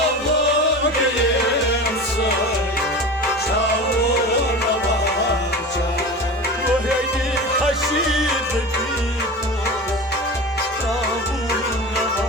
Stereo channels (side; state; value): both; normal; correlation 0.31